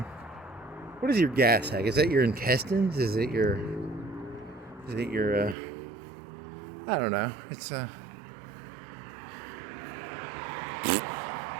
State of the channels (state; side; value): drops out; left; at 5.6 s